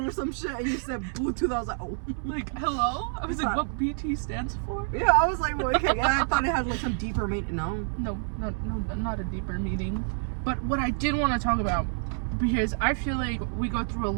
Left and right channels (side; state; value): left; silent; 59 dB below the other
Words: or some shit, and you said Bluetooth. I was like, oh. Like, hello? I was like, what BT stands for? Yeah, I was like, well, okay. I thought it had like some deeper meaning. No. No, not a deeper meaning. But what I did want to talk about, because I feel like we go through a